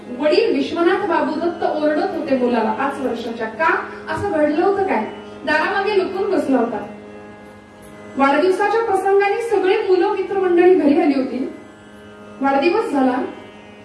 वडील विश्वनाथ बाबू दत्त ओरडत होते मुलाला 5 वर्षाच्या. का असं घडलं होतं काय? दारामागे लपून बसला होता. वाढदिवसाच्या प्रसंगाने सगळे मुलं मित्रमंडळी घरी आली होती. वाढदिवस झाला,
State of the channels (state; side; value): identical; both; correlation 1.00